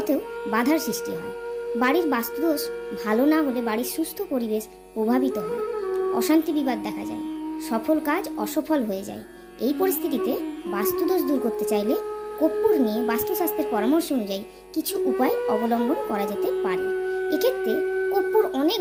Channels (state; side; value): identical; both; correlation 1.00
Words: বাধার সৃষ্টি হয়। বাড়ির বাস্তুদোষ ভালো না হলে বাড়ির সুস্থ পরিবেশ প্রভাবিত হয়, অশান্তি বিবাদ দেখা যায়, সফল কাজ অসফল হয়ে যায়। এই পরিস্থিতিতে বাস্তুদোষ দূর করতে চাইলে কর্পূর নিয়ে বাস্তুশাস্ত্রের পরামর্শ অনুযায়ী কিছু উপায় অবলম্বন করা যেতে পারে। এক্ষেত্রে কর্পূর অনেক